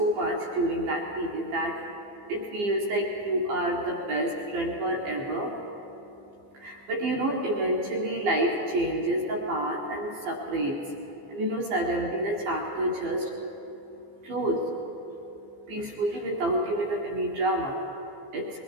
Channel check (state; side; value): late; left; 15 ms